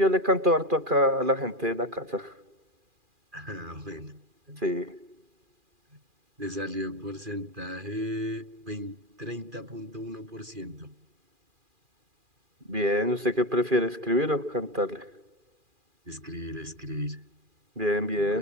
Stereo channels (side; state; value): left; late; 2.4 ms